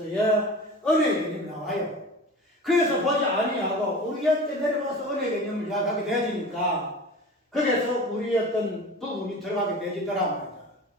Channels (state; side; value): normal; both; correlation 0.36